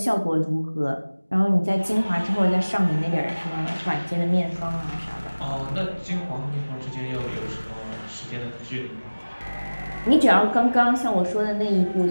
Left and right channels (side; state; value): both; inverted; correlation -1.00